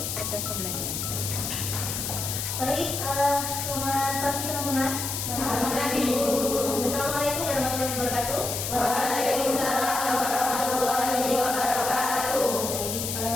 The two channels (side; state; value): left; noise; hiss, 3 dB below the sound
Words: proses pembelajaran. Baik, selamat pagi teman-teman. Selamat pagi, Bu. Assalamualaikum warahmatullahi wabarakatuh. Waalaikumsalam warahmatullahi wabarakatuh. Baik,